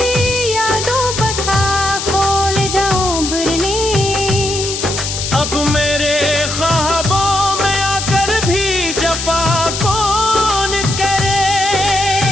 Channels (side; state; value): left; noise; hiss, 4 dB below the sound